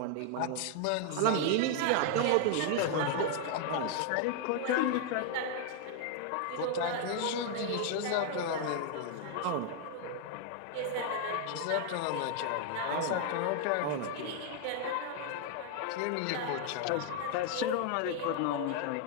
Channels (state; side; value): different; both; correlation 0.00